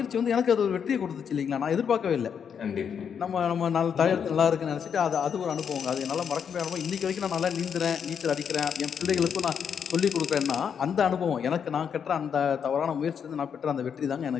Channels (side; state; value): right; quieter; 7.4 dB